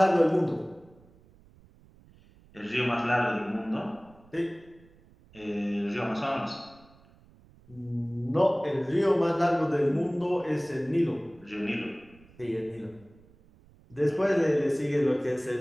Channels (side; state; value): right; noise; rumble, 27 dB below the sound